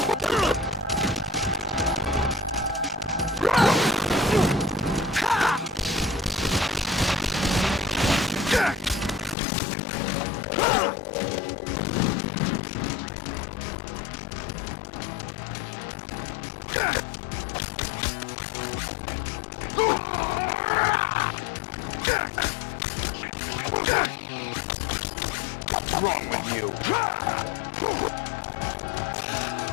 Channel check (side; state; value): right; drops out; at 9.3 s